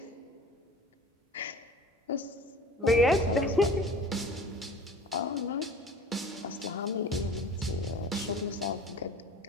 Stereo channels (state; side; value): normal; both; correlation 0.42